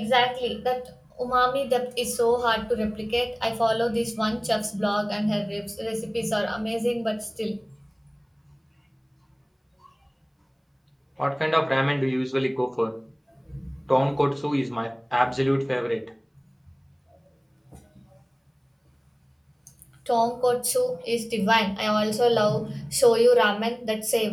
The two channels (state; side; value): identical; both; correlation 1.00